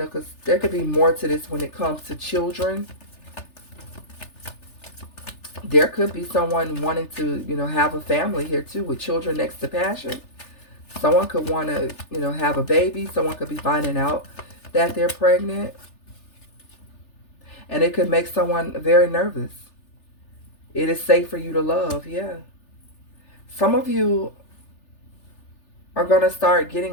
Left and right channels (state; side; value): late; right; 3.4 ms